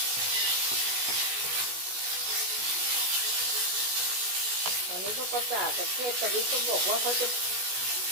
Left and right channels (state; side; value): late; left; 16 ms